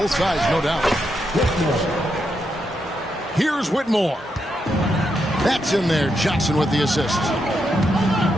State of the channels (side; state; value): both; normal; correlation 0.82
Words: sides, no doubt. Here's Whitmore. That's in there. Johnson with the assist.